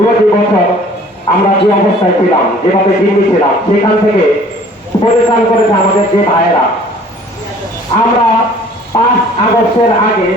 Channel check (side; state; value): both; normal; correlation 0.52